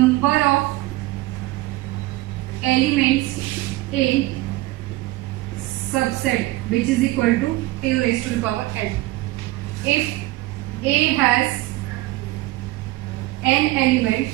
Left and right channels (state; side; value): quieter; left; 18.6 dB